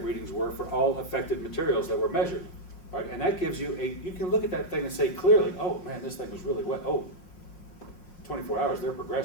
readings were for all affected materials that were measured. Right? And that gives you you can look at that thing and say clearly, oh man, this thing was really wet. Oh, 24 hours, they're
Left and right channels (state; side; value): late; right; 5.6 ms